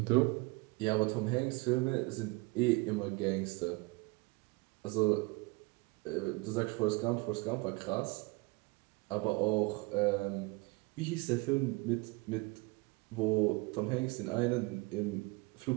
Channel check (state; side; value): quieter; left; 25.5 dB